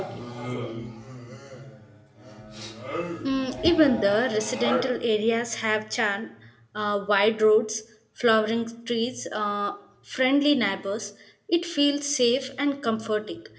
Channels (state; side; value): identical; both; correlation 1.00